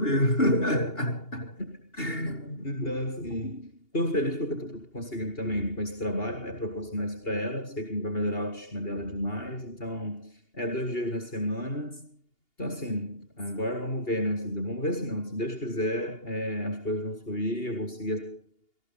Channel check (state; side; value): late; right; 2.8 ms